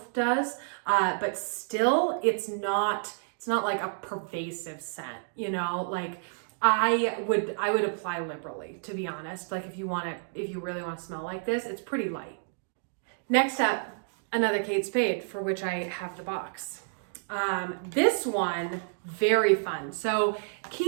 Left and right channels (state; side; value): silent; left; digital silence